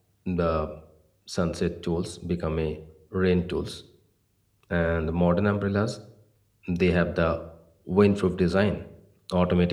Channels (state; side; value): identical; both; correlation 1.00